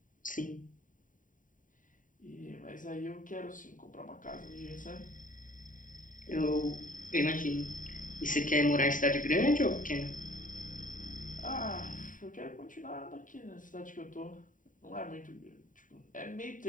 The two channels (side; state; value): right; late; 0.38 ms